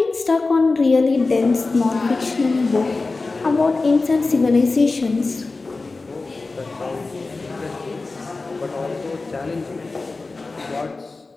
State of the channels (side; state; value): right; quieter; 3.6 dB